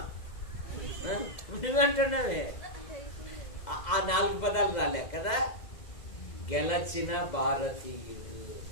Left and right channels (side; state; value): right; late; 2.0 ms